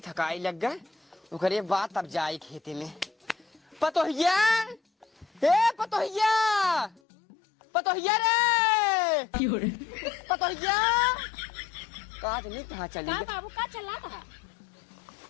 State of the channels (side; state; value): right; drops out; at 7.0 s